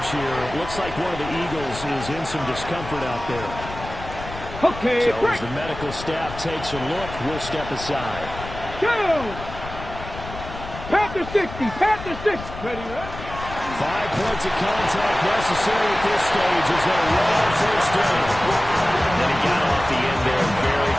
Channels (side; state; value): left; noise; rumble, 12 dB below the sound